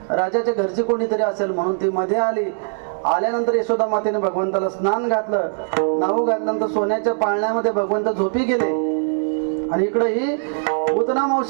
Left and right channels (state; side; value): silent; left; digital silence